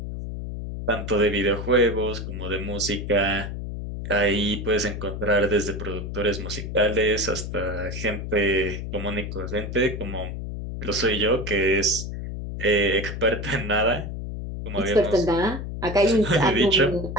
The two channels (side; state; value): left; noise; hum, 6 dB below the sound